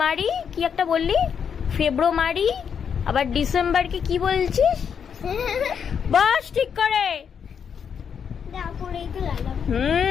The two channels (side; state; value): right; quieter; 7.2 dB